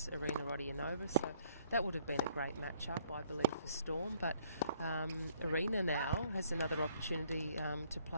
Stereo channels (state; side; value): inverted; both; correlation -0.64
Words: Irina Rodionova, so that would have been a great matchup, I believe, for Storm. But Irina now has another opportunity to